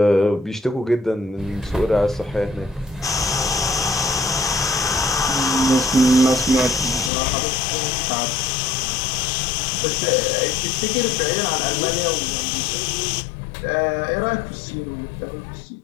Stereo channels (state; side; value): drops out; right; at 7.1 s